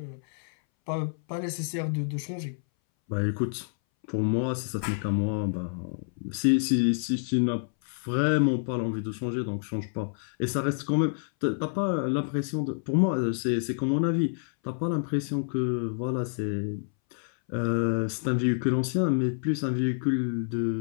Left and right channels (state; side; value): silent; right; 59 dB below the other